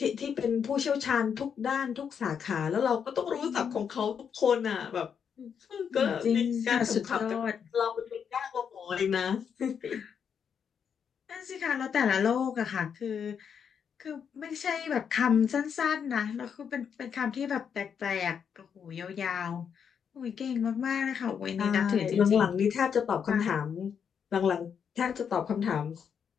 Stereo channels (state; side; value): quieter; right; 7.3 dB